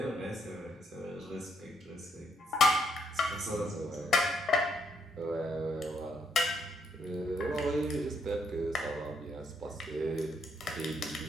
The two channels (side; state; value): both; normal; correlation 0.74